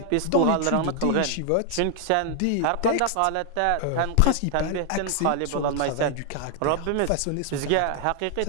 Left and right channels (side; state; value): both; different; correlation 0.00